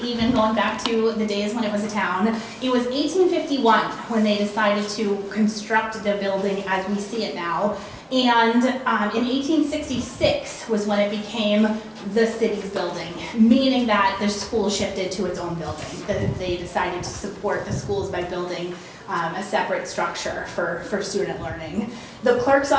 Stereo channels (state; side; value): identical; both; correlation 1.00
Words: even going back to the days when it was a town. It was 1851 when they decided to construct the building as we see it now. And in 1866 was when it became the city's building, meaning that the school shifted to its own building. That they decided to support the schools by building a separate structure for student learning. The clerk's